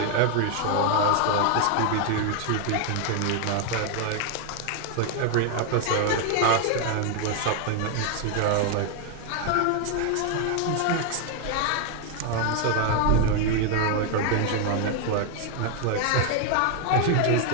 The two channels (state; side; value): different; both; correlation 0.00